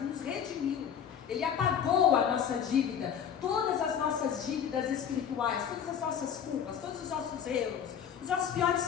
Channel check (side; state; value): right; quieter; 8.2 dB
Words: nos redimiu, ele apagou a nossa dívida, todas as nossas dívidas espirituais, todas as nossas culpas, todos os nossos erros, os nossos piores